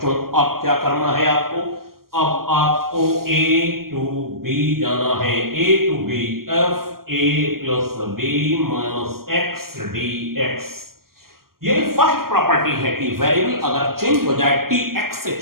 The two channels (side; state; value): left; late; 0.92 ms